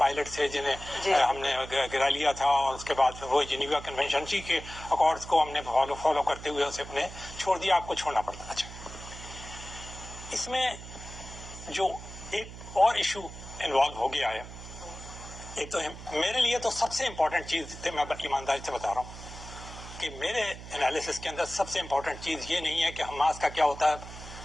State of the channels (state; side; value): noise; right; hum, 13 dB below the sound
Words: تھے جنہیں ہم نے گرا لیا تھا اور اس کے بعد وہ جنیوا کنونشن جی کے اکارڈز کو ہم نے فالو کرتے ہوئے اسے اپنے چھوڑ دیا. آپ کو چھوڑنا پڑتا. اچھا اس میں جو ایک اور ایشو انوالو ہو گیا ہے, ایک تو میرے لیے تو سب سے امپورٹنٹ چیز تھی, میں ایمانداری سے بتا رہا ہوں کہ میرے انالیسس کے اندر سب سے امپورٹنٹ چیز یہ نہیں ہے کہ حماس کا کیا ہوتا ہے,